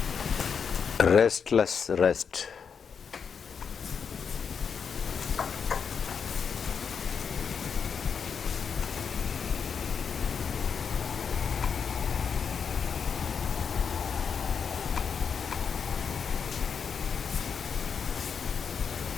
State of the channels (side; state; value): right; quieter; 6.5 dB